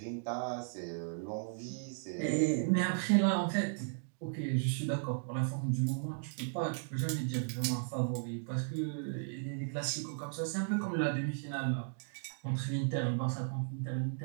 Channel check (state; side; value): silent; left; digital silence